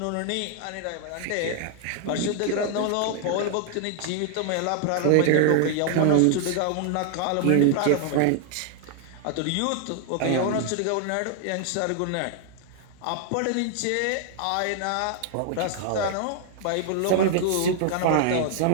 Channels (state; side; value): different; both; correlation 0.00